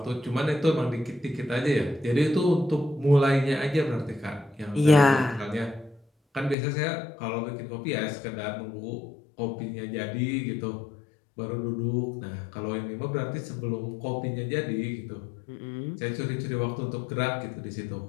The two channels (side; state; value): right; drops out; at 6.6 s